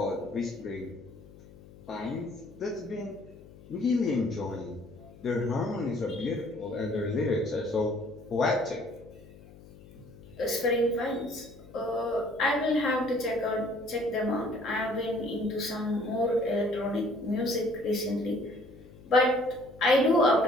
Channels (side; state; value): left; noise; hum, 21 dB below the sound